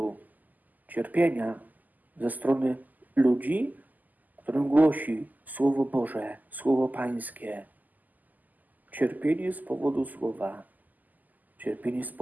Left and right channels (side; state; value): left; late; 0.082 ms